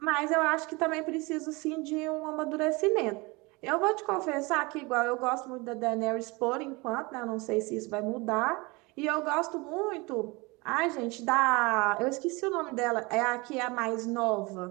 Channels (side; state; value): left; quieter; 25.5 dB